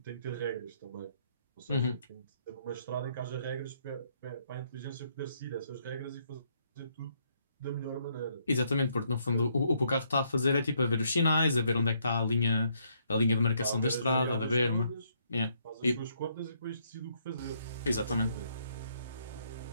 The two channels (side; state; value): both; inverted; correlation -0.71